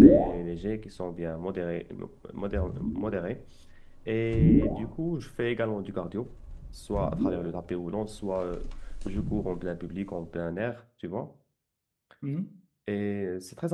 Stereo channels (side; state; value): both; identical; correlation 1.00